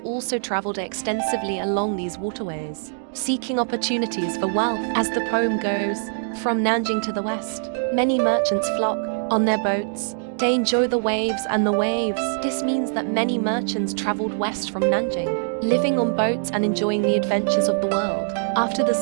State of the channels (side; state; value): left; silent; digital silence